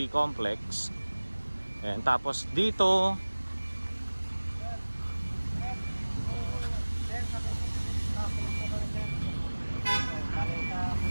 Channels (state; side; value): inverted; both; correlation -1.00